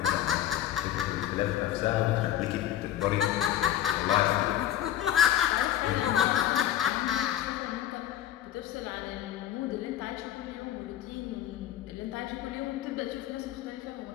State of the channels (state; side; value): quieter; right; 12.1 dB